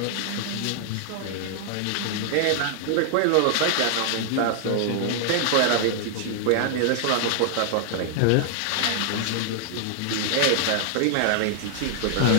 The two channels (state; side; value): different; both; correlation 0.00